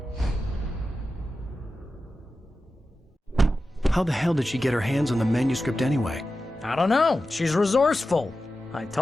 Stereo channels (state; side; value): normal; both; correlation 0.93